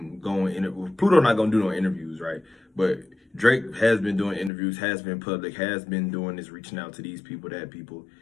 go in. Pluto not gonna do no interviews, right? But Drake has been doing interviews, has been public, has been doing this, reaching out to these people, that people.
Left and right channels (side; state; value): right; drops out; at 4.5 s